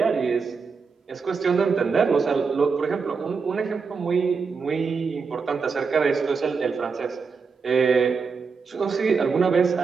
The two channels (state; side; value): quieter; left; 5.1 dB